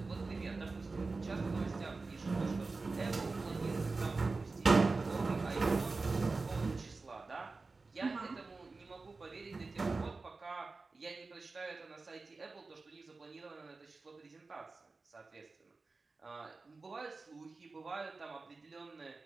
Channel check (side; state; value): left; quieter; 3.8 dB